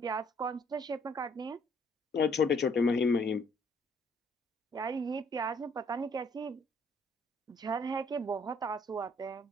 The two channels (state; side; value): normal; both; correlation 0.64